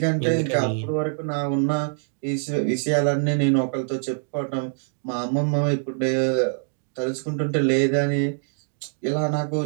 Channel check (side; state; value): left; silent; digital silence